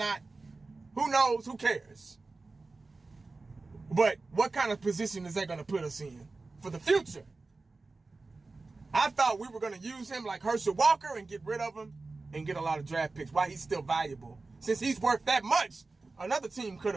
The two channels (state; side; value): quieter; left; 3.6 dB